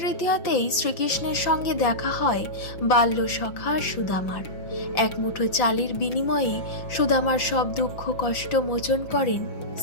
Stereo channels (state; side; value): late; right; 5.8 ms